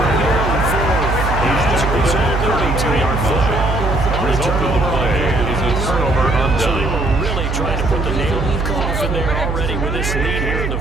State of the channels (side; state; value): right; noise; hum, 2 dB below the sound